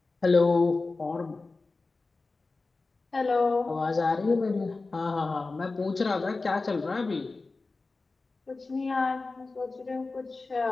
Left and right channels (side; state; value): right; quieter; 3.7 dB